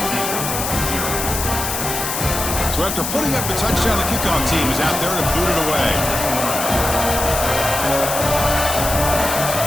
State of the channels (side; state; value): left; noise; hiss, 3 dB below the sound